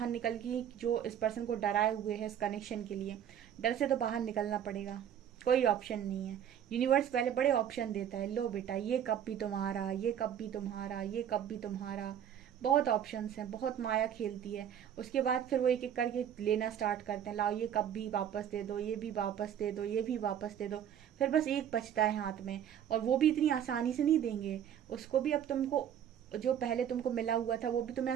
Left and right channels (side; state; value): left; quieter; 9.5 dB